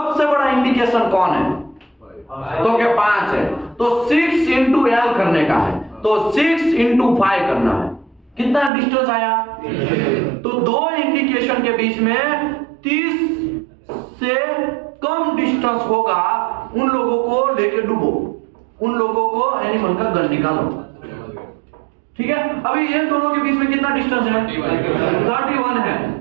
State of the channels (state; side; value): drops out; left; at 8.7 s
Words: बड़ा इंडिकेशन कौन है? तो क्या 5 है, तो 6 × L करने का है, तो 6 × 5 करना है। कितना डिस्टेंस आया? तो 2 इंडिकेशन के बीच में 30 से कम डिस्टेंस होगा, उन लोगों को लेके डूबो, उन लोगों को एनिमल का गन निकालो। ठीक है। अभी ये दोनों के बीच में कितना डिस्टेंस है? 31 है।